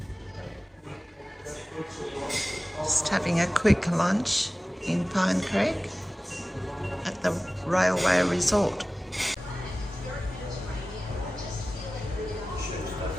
Just having a quick lunch in Pine Creek at the Railway Resort.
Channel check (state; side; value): normal; both; correlation 0.97